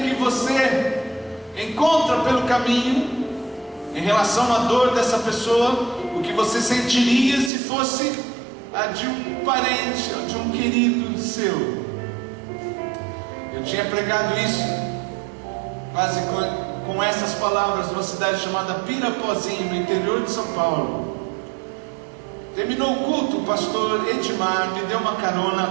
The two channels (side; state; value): left; drops out; at 7.5 s